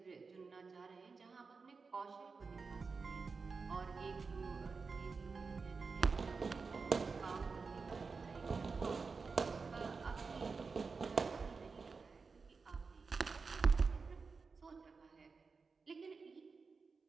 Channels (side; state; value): left; quieter; 4.7 dB